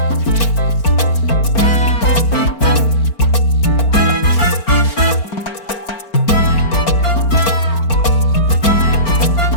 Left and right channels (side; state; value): right; late; 4.4 ms